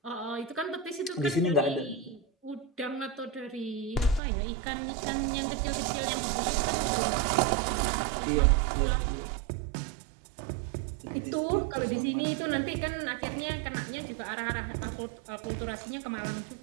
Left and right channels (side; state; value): left; drops out; at 4.2 s